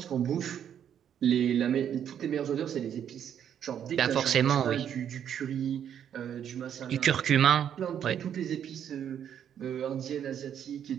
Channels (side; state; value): left; quieter; 9.2 dB